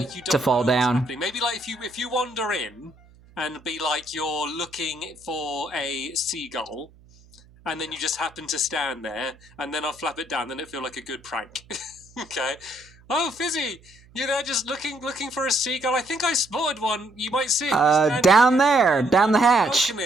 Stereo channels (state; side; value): noise; right; hum, 26 dB below the sound